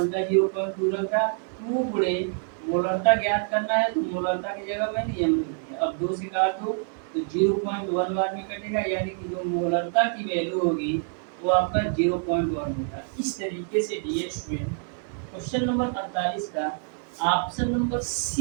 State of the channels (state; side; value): silent; left; 57 dB below the other